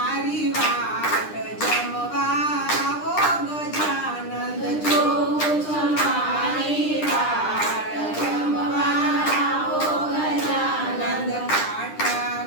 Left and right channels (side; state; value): right; late; 9.9 ms